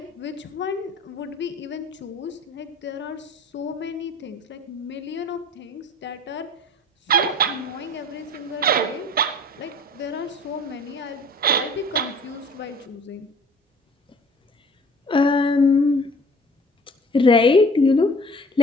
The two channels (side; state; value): both; normal; correlation 0.48